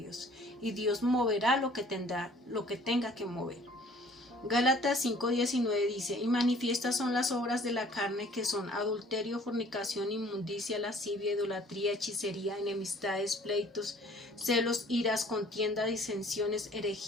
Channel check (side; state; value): both; normal; correlation 0.54